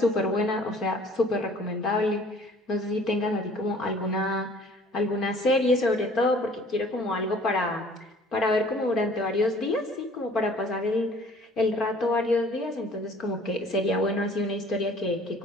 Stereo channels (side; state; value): both; normal; correlation 0.53